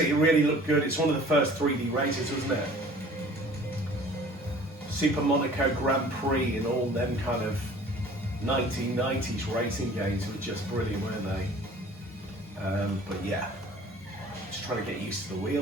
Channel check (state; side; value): normal; both; correlation 0.49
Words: it really looked good. It's one of the first 3D races, wasn't it? Super Monaco Grand Prix and all them kind of 1990s racing games were just brilliant, weren't they? But yeah, just trying to get used to the